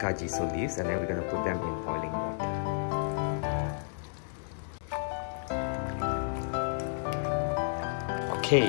leaves and then we're gonna put them in boiling water.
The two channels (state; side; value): silent; right; digital silence